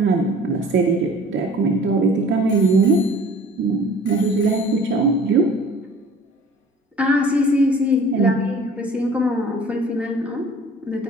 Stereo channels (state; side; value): normal; both; correlation 0.48